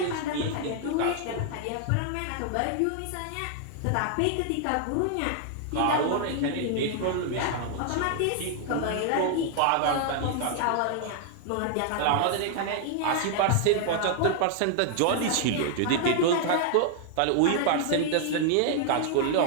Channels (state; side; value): different; both; correlation 0.00